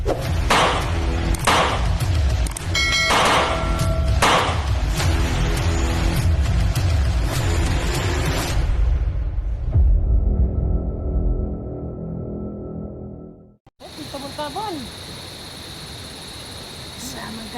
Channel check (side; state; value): both; identical; correlation 1.00